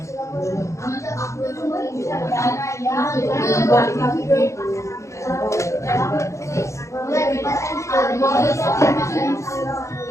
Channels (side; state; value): right; late; 0.14 ms